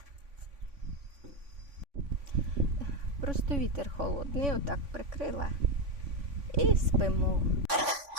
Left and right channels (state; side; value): late; left; 3.5 ms